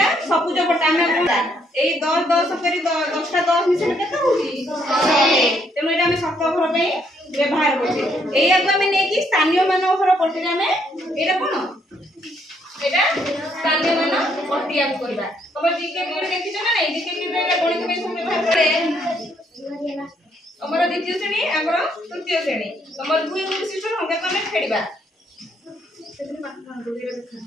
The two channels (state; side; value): normal; both; correlation 0.71